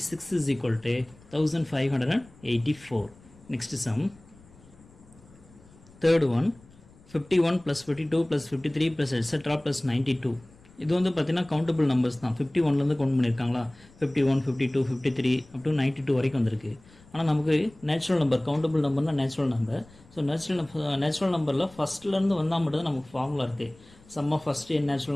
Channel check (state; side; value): noise; left; rumble, 26 dB below the sound